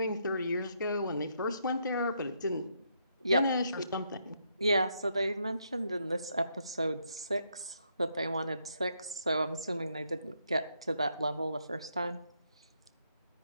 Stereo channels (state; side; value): inverted; both; correlation -0.76